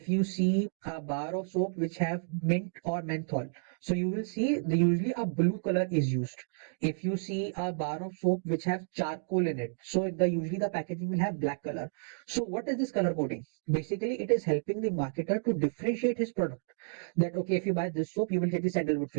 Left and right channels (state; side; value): silent; left; digital silence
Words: you see a bar of soap which have mint or menthol, so you will see the usually a blue color is used. If you see a bar of soap which have charcoal in it, so the usually the packaging will have black color. So what is this color coding? Basically it is helping the marketer to differentiate his product, that okay, if you buy this soap you will get the sandalwood